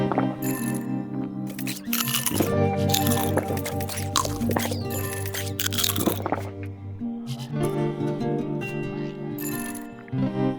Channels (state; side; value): identical; both; correlation 1.00